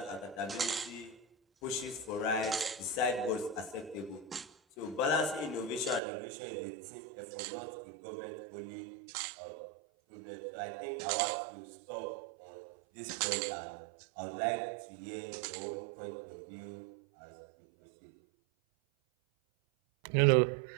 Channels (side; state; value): left; drops out; at 6.0 s